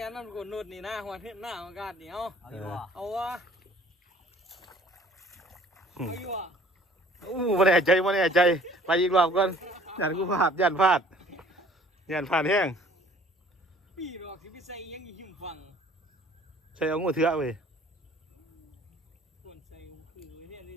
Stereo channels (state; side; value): normal; both; correlation 0.53